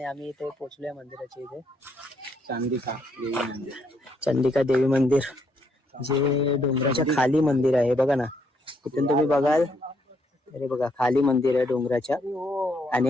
आम्ही इथे पोहोचलोय मंदिराच्या इथे. चंडिका देवी मंदिर जे डोंगराच्या खाली मंदिर आहे. बघा ना, तिथून तुम्ही बघाल. अरे बघा खाली मंदिर आहे डोंगराच्या. आणि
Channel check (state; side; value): normal; both; correlation 0.73